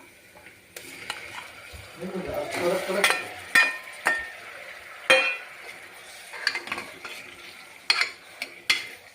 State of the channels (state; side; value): identical; both; correlation 1.00